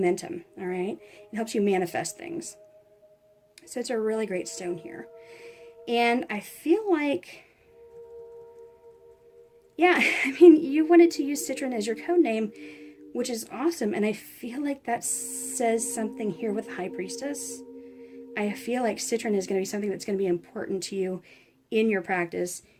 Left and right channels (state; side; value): identical; both; correlation 1.00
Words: all right? It helps you manifest things. So it's a really great stone here. And I feel like, yeah, I mean, you wanted to use Citrine as your code name, which is awesome. And I feel like that says something here with High Priestess. I feel like Citrine is going to be something that's going to be important to you in your practice,